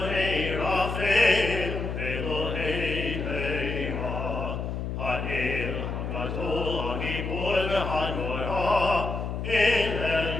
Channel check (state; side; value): noise; left; hum, 4 dB below the sound